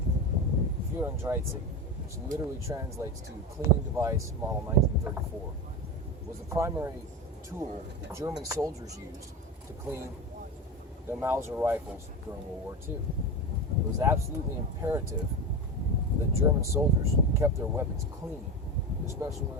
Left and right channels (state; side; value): normal; both; correlation 0.21